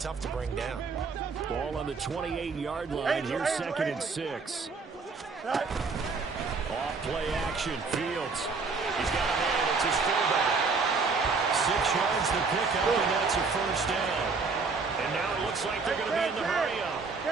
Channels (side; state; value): left; quieter; 4.5 dB